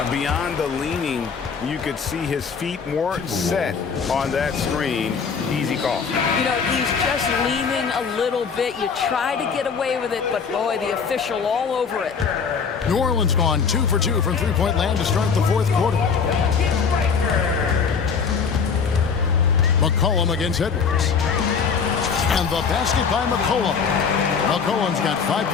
Beyond the leaning, you could see his feet more set on that screen. Easy call. You know, he's just leaning a little bit. You try to get away with it, but boy, the official all over it. New Orleans gone 2 for 2 from three-point land to start the fourth quarter. McCollum against Edwards. And the basket by McCollum. McCollum's got 5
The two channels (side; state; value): right; quieter; 6.0 dB